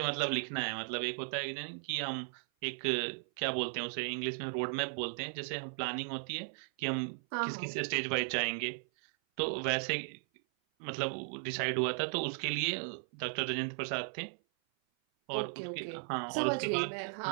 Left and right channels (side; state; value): left; silent; 54 dB below the other